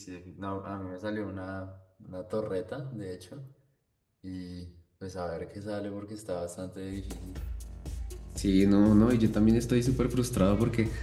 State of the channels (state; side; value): identical; both; correlation 1.00